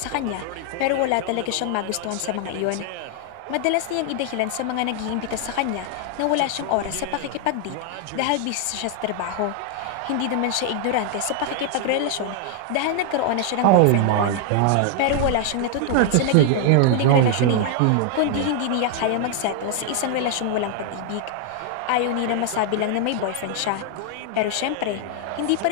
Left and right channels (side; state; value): both; different; correlation 0.00